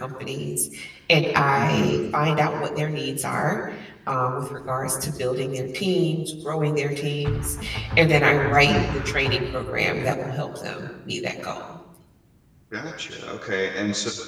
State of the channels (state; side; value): identical; both; correlation 1.00